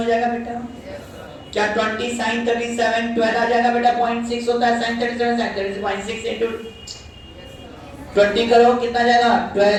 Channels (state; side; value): identical; both; correlation 1.00